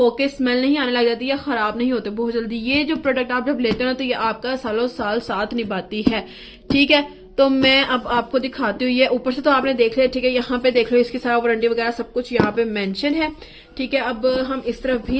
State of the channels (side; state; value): both; identical; correlation 1.00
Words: स्मेल नहीं आने लग जाती या खराब नहीं होते बहुत जल्दी। ये जो प्रोडक्ट आप जब लेते हो ना, तो ये आपका सालों साल साथ निभाती है। ठीक है, तो मैं अब आपको दिखाती हूँ। ये ऊपर से तो आपने देख लिया। ठीक है, यहाँ पे देख लो इसकी सारा वारंटी वगैरह सब कुछ यहाँ पे मेंशन है। ठीक है, अब हम इस तरफ